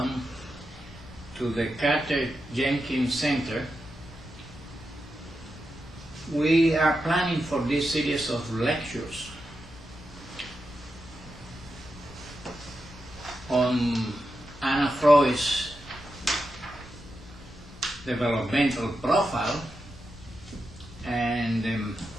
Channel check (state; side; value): normal; both; correlation 0.88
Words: to the Carter-Jenkins Center. We are planning for this series of lectures on Anna Freud's developmental profile and